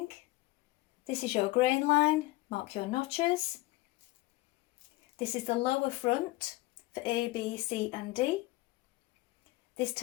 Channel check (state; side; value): quieter; right; 20.3 dB